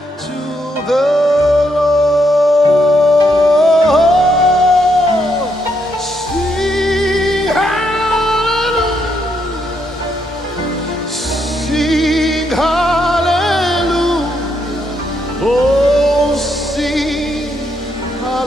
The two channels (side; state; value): both; normal; correlation 0.77